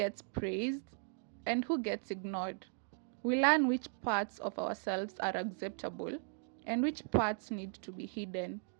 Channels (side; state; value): left; silent; 53 dB below the other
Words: praised, and who gets ignored. We learn which parts of ourselves are acceptable and which parts need to be hidden.